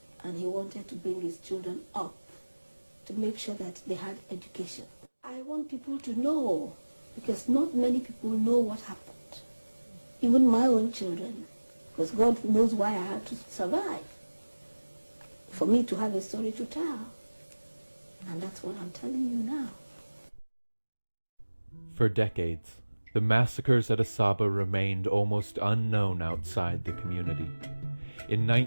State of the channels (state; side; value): inverted; both; correlation -1.00